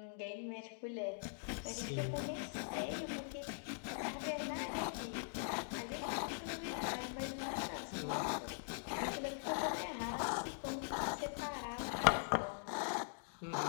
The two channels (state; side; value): silent; right; digital silence